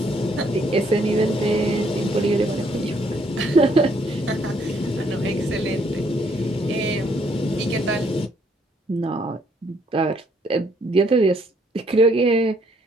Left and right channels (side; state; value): both; normal; correlation 0.68